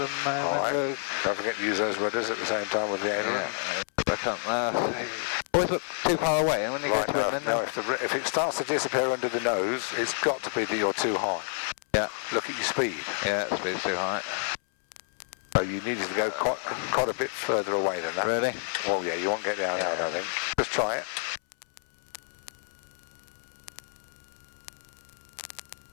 moment. Alright, don't forget to use those rudders at the same time with the aileron. Yeah, I can't always look too far away, and when you Right, get to it, no, if it starts to disappear under the nose, it's got to be that you're too high. Yeah. Look at your speed. Yeah, speed's too high. So you needed to go quite a bit further away than that. Really? Well, yeah, you won't get down there, I think. Just try it.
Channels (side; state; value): right; silent; 59 dB below the other